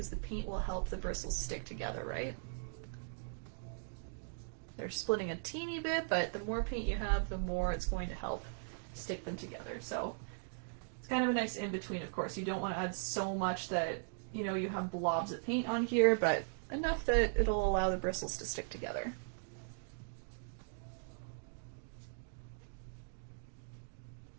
the paint will help the bristles stick together, right? They're splitting a teeny bit, but the more paint you have, the more it's going to help stick them together. So it's kind of a nice in-between, of course. You don't want to add so much that, you know, you have blobs of paint on here, but enough that it'll allow the bristles to stick together.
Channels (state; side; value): silent; left; digital silence